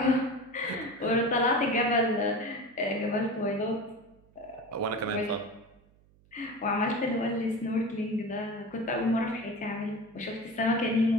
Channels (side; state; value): right; noise; hum, 30 dB below the sound